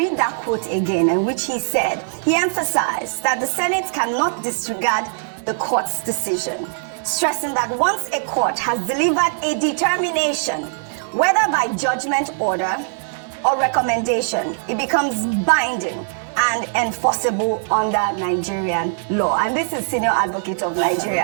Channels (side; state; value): left; silent; digital silence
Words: that quote again, in which he said, he emphasized that the Senate cannot disregard the court's decision, stressing that once a court has delivered a determination, whether by judgment, order, or recommendation, it becomes binding and enforceable under Nigerian law. And this is Senior Advocate of